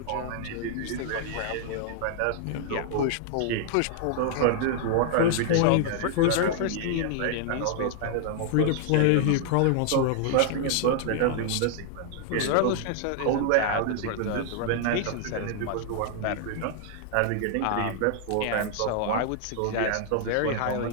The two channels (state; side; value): different; both; correlation 0.00